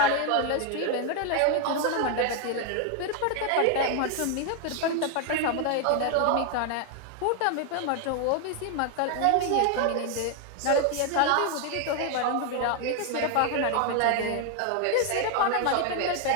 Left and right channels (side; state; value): both; different; correlation 0.01